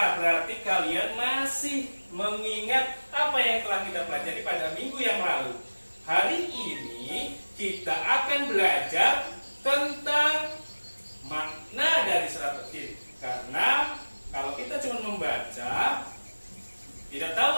Berarti kalian masih mengingat apa yang telah kita pelajari pada minggu yang lalu. Hari ini kita akan belajar tentang makna dari surat At-Tin. Karena kalau kita cuma membaca, tidak tahu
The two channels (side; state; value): both; inverted; correlation -1.00